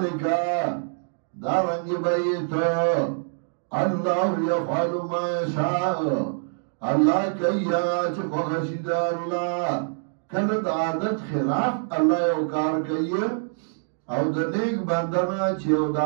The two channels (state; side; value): silent; left; digital silence